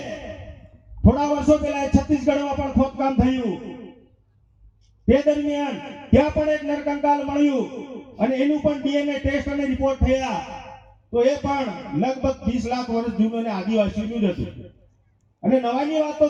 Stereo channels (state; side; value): identical; both; correlation 1.00